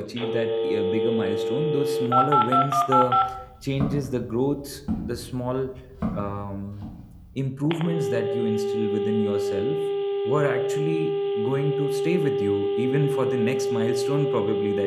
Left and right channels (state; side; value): identical; both; correlation 1.00